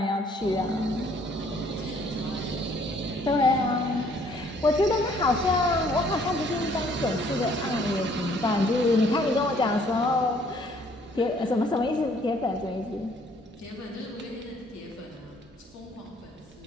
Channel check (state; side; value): normal; both; correlation 0.62